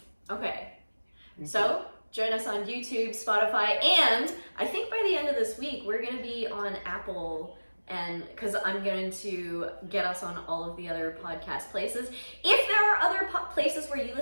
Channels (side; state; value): both; inverted; correlation -1.00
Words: Okay. So, join us on YouTube, Spotify, and I think by the end of this week, we're going to be on Apple, and because I'm going to get us on all of the other podcast places. If there are other places where you